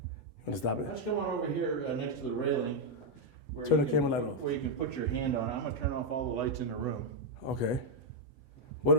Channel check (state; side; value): late; right; 8.1 ms